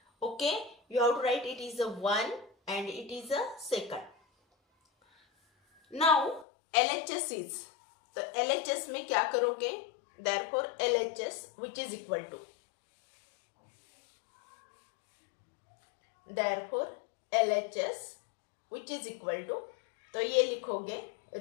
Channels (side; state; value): right; drops out; at 6.5 s